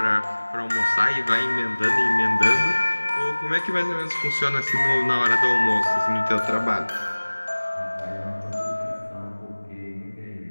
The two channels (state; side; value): inverted; both; correlation -1.00